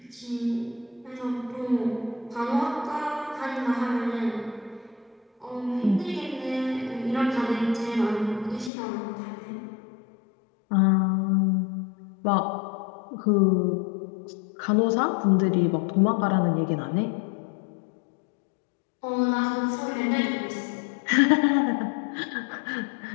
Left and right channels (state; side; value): drops out; right; at 8.7 s